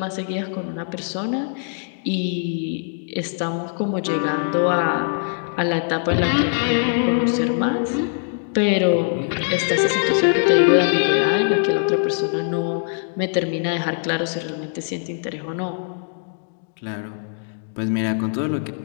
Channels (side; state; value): right; silent; 62 dB below the other